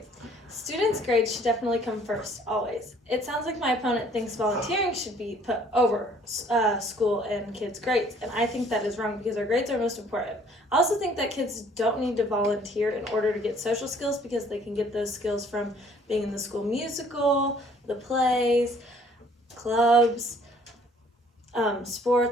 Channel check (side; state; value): both; normal; correlation 0.58